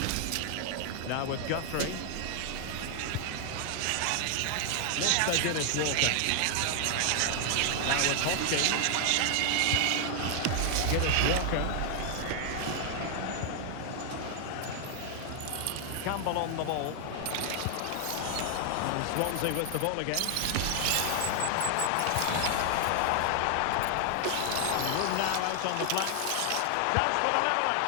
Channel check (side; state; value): both; different; correlation 0.00